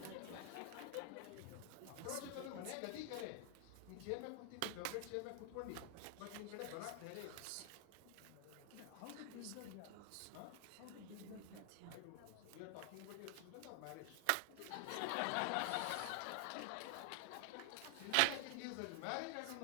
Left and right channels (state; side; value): different; both; correlation 0.00